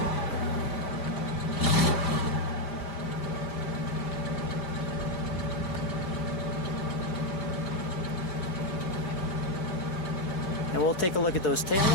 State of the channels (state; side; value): late; right; 5.0 ms